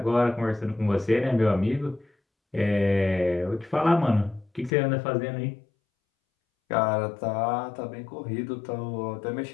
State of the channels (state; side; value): drops out; right; at 4.7 s